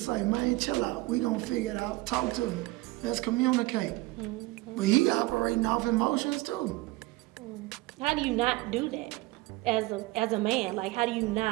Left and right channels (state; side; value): quieter; left; 20.7 dB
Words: to say, man, chill out. We gonna figure it out. Talk to me. Let's communicate. But he operating off emotions too. How do you not do that as a man? Like, how do you